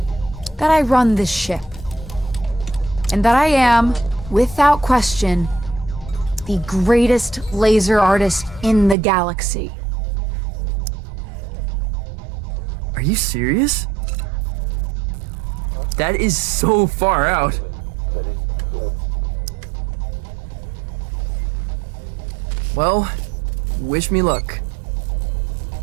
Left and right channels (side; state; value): left; drops out; at 9.0 s